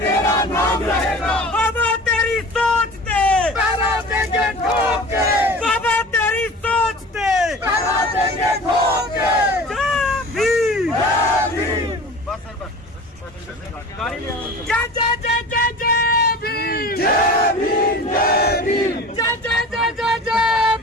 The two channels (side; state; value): both; normal; correlation 0.38